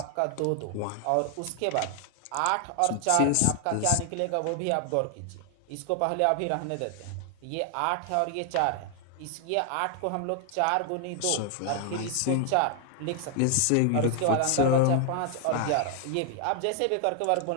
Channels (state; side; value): different; both; correlation 0.00